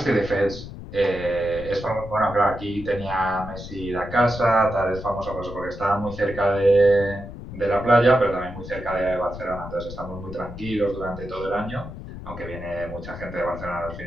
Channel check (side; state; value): left; noise; rumble, 11 dB below the sound